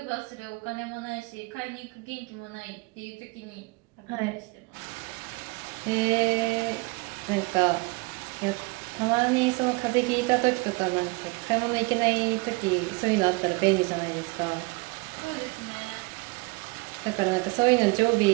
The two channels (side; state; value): left; quieter; 26.9 dB